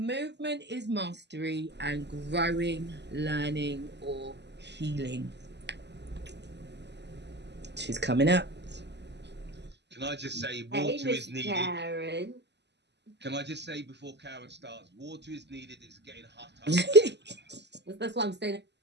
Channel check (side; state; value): left; late; 0.50 ms